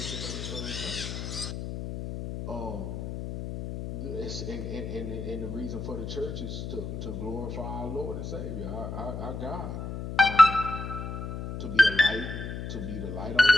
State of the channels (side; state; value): left; noise; hum, 6 dB below the sound